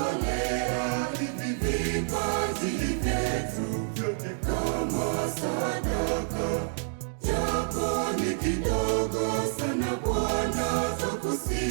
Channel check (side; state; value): left; silent; digital silence